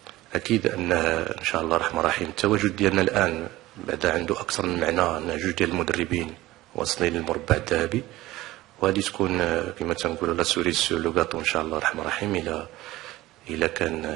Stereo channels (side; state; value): left; quieter; 17.4 dB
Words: أن إن شاء الله الرحمن الرحيم التواجد ديالنا الآن بعد عنده أكثر من معنى، أن جوج ديال المدربين واصلين للمربع الذهبي، وهذه تكون كما تنقولوا لا سوري سور لو غاتو إن شاء الله الرحمن الرحيم إلا